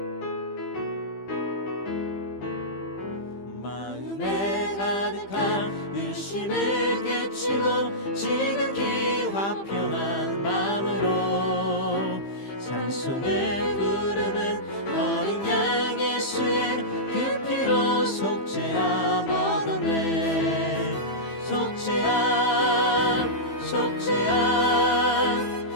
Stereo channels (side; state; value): right; late; 15 ms